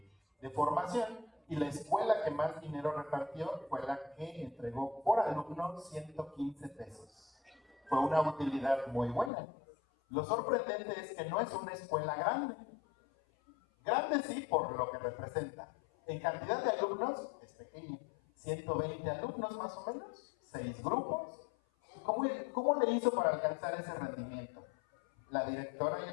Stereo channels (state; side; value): drops out; right; at 9.3 s